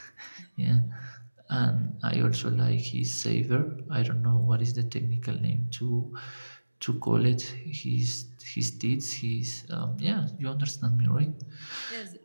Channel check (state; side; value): inverted; both; correlation -1.00